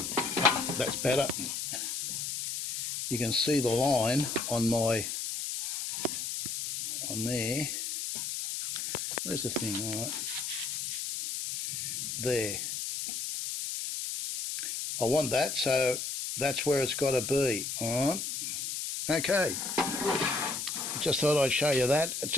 that's better. You can see the line on there. Where's the thing? All right. There. I want that, so that's where it's got to be. All right. Okay. Just thought I'd show you that. It's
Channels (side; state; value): left; noise; hiss, 3 dB below the sound